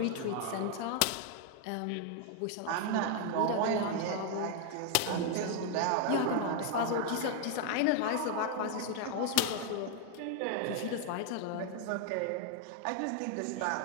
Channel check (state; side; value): different; both; correlation 0.00